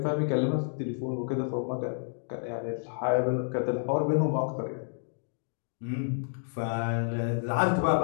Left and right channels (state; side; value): silent; right; 58 dB below the other